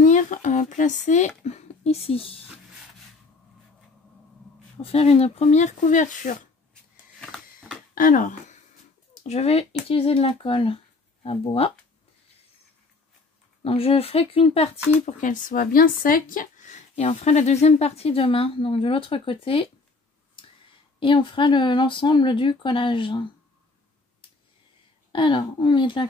placer ici pour faire une première couverture. Alors, je vais utiliser de la colle à bois. Donc, je ferai qu'une partie pour qu'elle soit bien sec et on fera la deuxième partie demain, donc de l'autre côté, et on fera l'ensemble du collage. Alors, on met de la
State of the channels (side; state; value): right; quieter; 3.7 dB